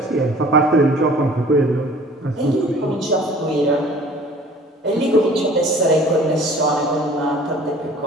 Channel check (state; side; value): normal; both; correlation 0.49